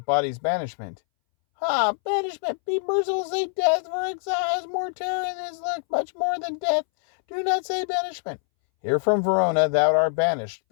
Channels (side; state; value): right; silent; 62 dB below the other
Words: body's banishment. Ha! Banishment! Be merciful, say death, for exile has more terror in his look, much more than death. Do not say banishment. Here from Verona thou art banished.